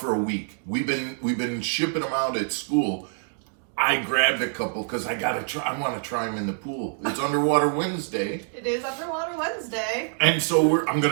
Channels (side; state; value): left; silent; digital silence